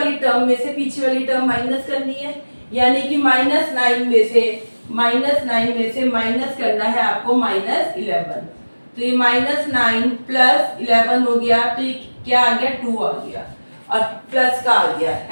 टर्म में से पीछे वाली टर्म माइनस करनी है, यानी कि -9 में से माइनस करना है आपको -11। तो ये -9 + 11 हो गया, तो ये क्या आ गया, 2 आ गया और प्लस का आ गया,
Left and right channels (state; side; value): inverted; both; correlation -1.00